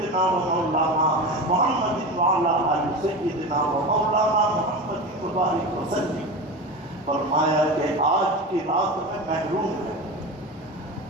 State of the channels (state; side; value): normal; both; correlation 0.26